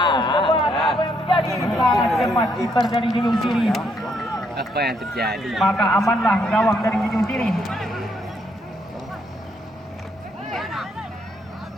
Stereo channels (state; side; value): normal; both; correlation 0.73